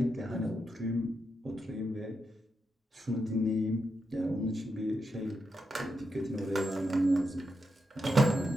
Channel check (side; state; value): both; normal; correlation 0.85